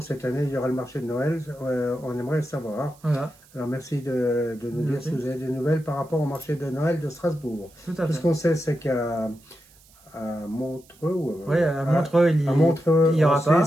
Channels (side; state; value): right; noise; hiss, 28 dB below the sound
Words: cette année il y aura le marché de Noël, on aimerait le savoir. Voilà, Alors merci de nous dire si vous avez des nouvelles par rapport au marché de Noël de Strasbourg. tout à Tout ce fait. qu'on sait, c'est qu'à Montreux, Oui, à Montreux, il en y aura pas.